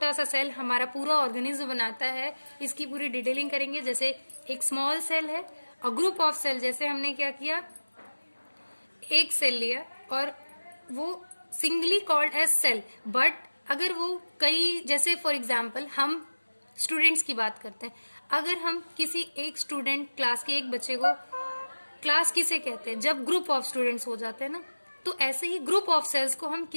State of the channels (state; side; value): inverted; both; correlation -1.00